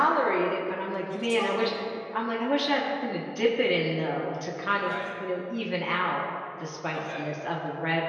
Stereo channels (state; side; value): identical; both; correlation 1.00